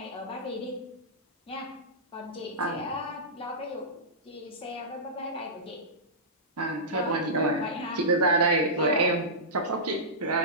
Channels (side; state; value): both; normal; correlation -0.17